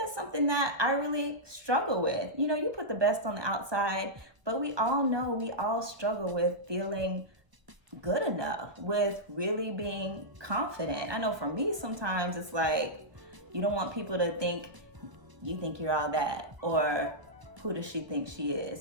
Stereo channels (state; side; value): late; left; 1.2 ms